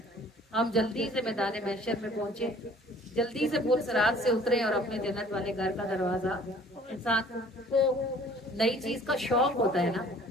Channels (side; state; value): both; normal; correlation 0.52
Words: ہم جلدی سے میدان محشر میں پہنچے، جلدی سے پور صراط سے اترے اور اپنے جنت والے گھر کا دروازہ۔ انسان کو نئی چیز کا شوق ہوتا ہے نا،